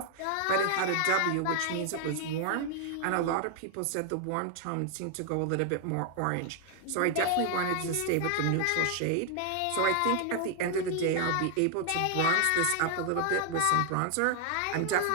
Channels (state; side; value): different; both; correlation 0.00